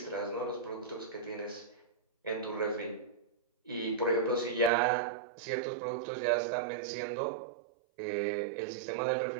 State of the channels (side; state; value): left; drops out; at 4.7 s